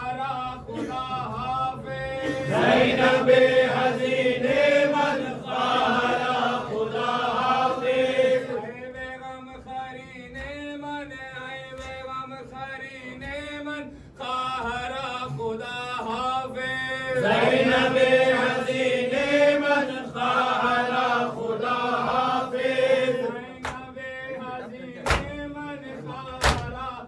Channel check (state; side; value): identical; both; correlation 1.00